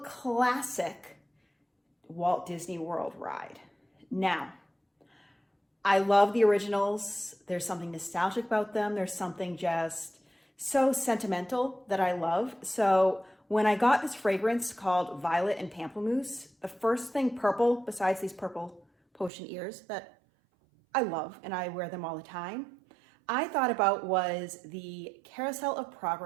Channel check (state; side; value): drops out; left; at 19.3 s